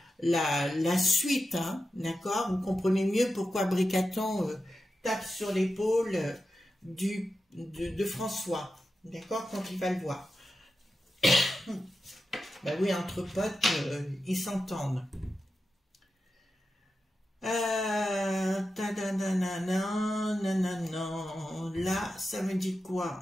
suite, hein, d'accord? Vous comprenez mieux pourquoi Bricaton tape sur l'épaule de François, d'accord, quand il va le voir. Ben oui, entre potes, ils s'entendent. Là, ça me dit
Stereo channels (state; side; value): normal; both; correlation 0.90